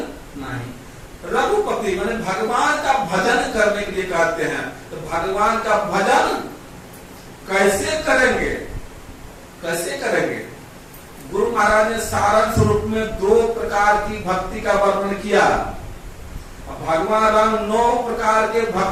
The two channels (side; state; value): both; identical; correlation 1.00